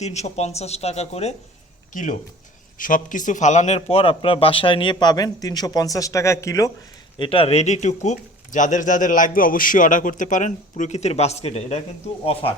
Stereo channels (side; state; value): both; normal; correlation 0.44